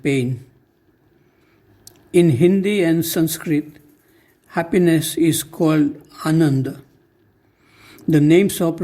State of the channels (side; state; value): both; identical; correlation 1.00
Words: pain. In Hindi and Sanskrit, happiness is called Ananda. The names of